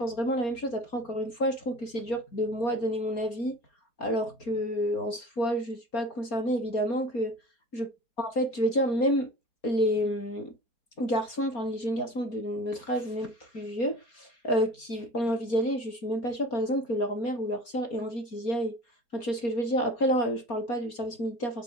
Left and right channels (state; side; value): late; right; 4.3 ms